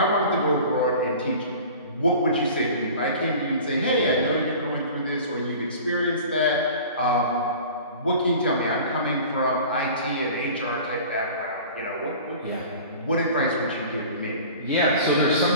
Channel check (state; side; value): inverted; both; correlation -0.41